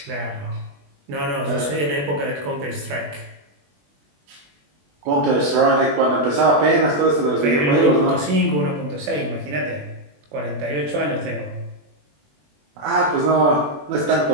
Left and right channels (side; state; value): left; late; 21 ms